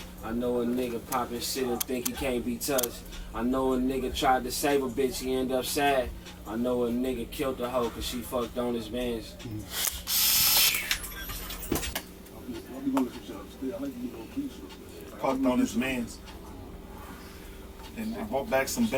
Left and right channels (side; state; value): both; identical; correlation 1.00